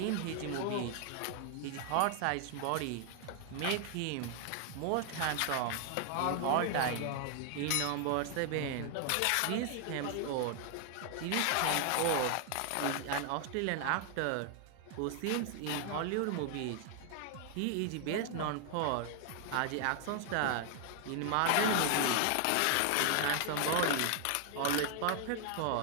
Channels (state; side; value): different; both; correlation 0.00